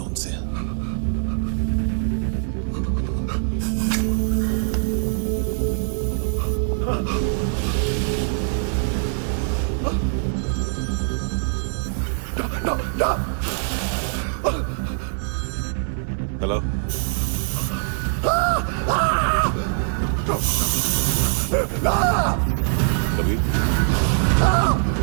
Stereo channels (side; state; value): left; silent; 56 dB below the other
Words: उनसे। हेलो, कभी